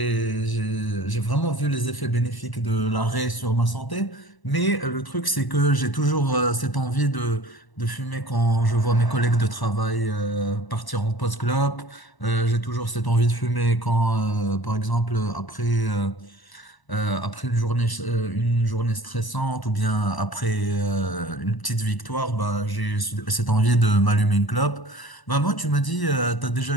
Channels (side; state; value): right; late; 1.0 ms